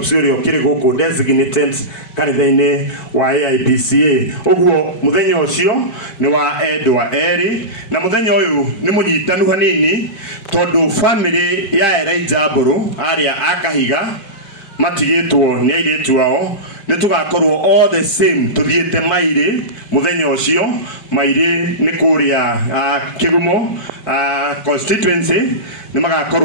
uri kiri guku designated kanitha-ini wa AIPCA ogwo muthenya ucio ni wa Edwa Eri na muthenya uyu ni munyitanu hanini tondu family ya Elijah Mburu aria akahiga matigitwo ni airetu wao ni tugakorwo all the same tuthiete maire muthenya ucio maire ni kuria Kigumo constituency ni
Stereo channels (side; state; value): right; late; 5.0 ms